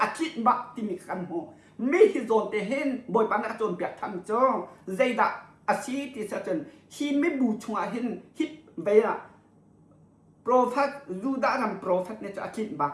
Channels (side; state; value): both; identical; correlation 1.00